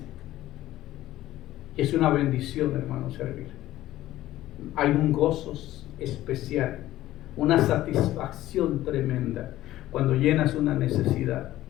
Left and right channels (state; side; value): quieter; right; 14.9 dB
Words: Es una bendición, hermano, servir. Hay un gozo especial, una satisfacción tremenda cuando llenas una necesidad.